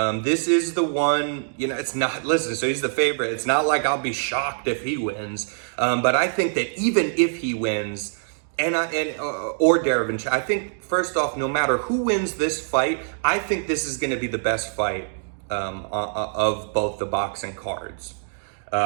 This is the one, it's not, listen, so he's the favorite. It's not like I'll be shocked if he wins. But I think that even if he wins, or Derevyanchenko, I think, first off, no matter who wins this fight, I think this is going to be the best fight of both the boxing cards.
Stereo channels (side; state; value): left; silent; digital silence